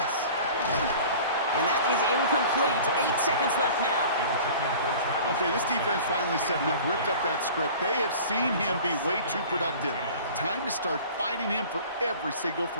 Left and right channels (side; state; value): both; inverted; correlation -0.43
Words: And that is incomplete. 8 seconds left now. Okay, this defense finally set enough, ripped up that script. They have seen him be way too productive. Time to start fighting him for every single